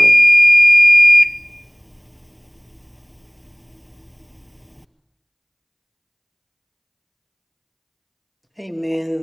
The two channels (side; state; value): both; identical; correlation 1.00